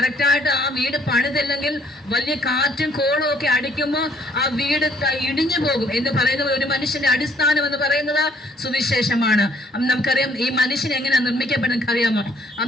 ആ വീട് പണിതില്ലെങ്കിൽ വലിയ കാറ്റും കോളും ഒക്കെ അടിക്കുമ്പോൾ ആ വീട് ഇടിഞ്ഞു പോകും എന്ന് പറയുന്നത്. ഒരു മനുഷ്യന്റെ അടിസ്ഥാനം എന്ന് പറയുന്നത് സുവിശേഷമാണ്. നമുക്കറിയാം, ഈ മനുഷ്യൻ എങ്ങനെയാണ് നിർമ്മിക്കപ്പെടുന്നത് അറിയാമോ?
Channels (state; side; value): normal; both; correlation 0.63